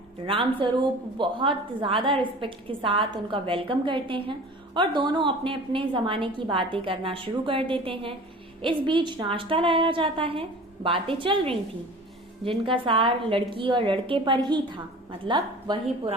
रामस्वरूप बहुत ज्यादा रिस्पेक्ट के साथ उनका वेलकम करते हैं और दोनों अपने अपने जमाने की बातें करना शुरू कर देते हैं। इस बीच नाश्ता लाया जाता है। बातें चल रही थी जिनका सार लड़की और लड़के पर ही था। मतलब वही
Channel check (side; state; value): both; normal; correlation 0.41